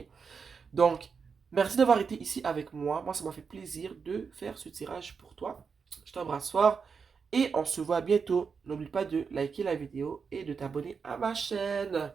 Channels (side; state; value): left; quieter; 5.7 dB